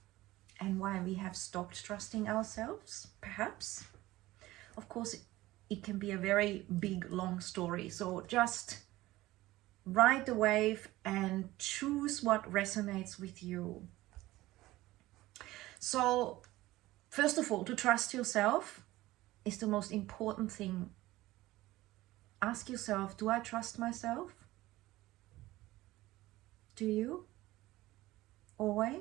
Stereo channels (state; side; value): quieter; left; 17.5 dB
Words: and why we have stopped trusting ourselves, perhaps. Of course, it can be a very big, long story. So just ride the wave and choose what resonates with you. So first of all, to trust yourself is the most important thing. Ask yourself, do I trust myself? Do you?